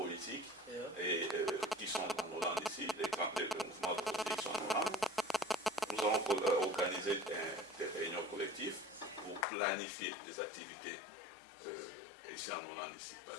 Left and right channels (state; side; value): drops out; right; at 9.5 s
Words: et, qui sont en Hollande ici, les mouvements politiques qui sont en Hollande. Nous avons organisé des réunions collectives pour planifier les activités ici en Hollande ici. Par